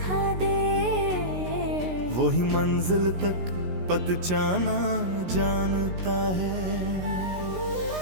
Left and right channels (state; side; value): late; left; 16 ms